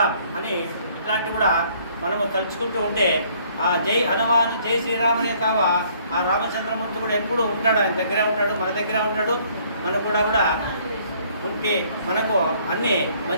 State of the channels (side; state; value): both; inverted; correlation -0.62